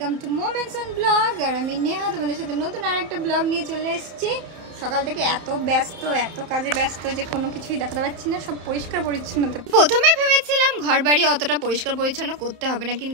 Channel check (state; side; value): late; left; 31 ms